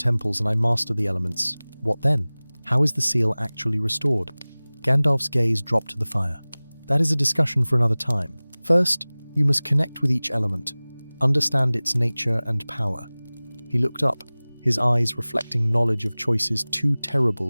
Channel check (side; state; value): both; inverted; correlation -1.00